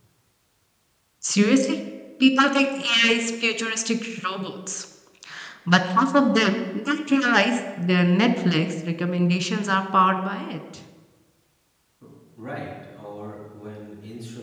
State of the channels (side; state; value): both; identical; correlation 1.00